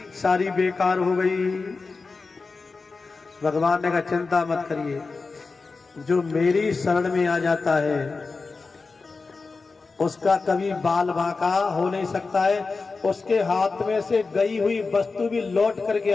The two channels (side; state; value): right; quieter; 4.2 dB